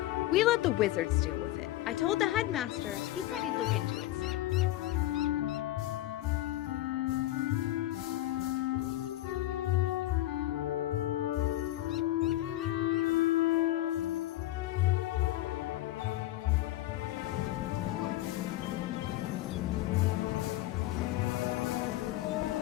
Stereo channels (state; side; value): quieter; right; 15.5 dB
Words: We let the wizards deal with it. I told the headmaster. He said he'd look into it.